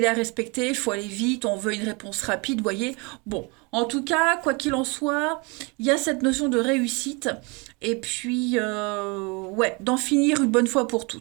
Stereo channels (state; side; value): quieter; left; 29.6 dB